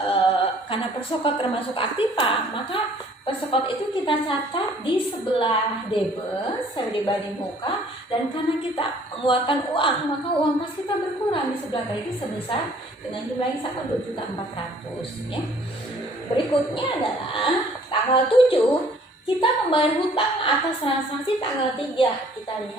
karena persekot termasuk aktiva, maka persekot itu kita catat di sebelah debit, dibanding muka, dan karena kita mengeluarkan uang, maka uang kas kita berkurang di sebelah kredit sebesar dengan jumlah yang sama 2.400.000 ya. Berikutnya adalah tanggal 7 kita membayar hutang atas transaksi tanggal 3. Kita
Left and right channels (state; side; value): normal; both; correlation 0.57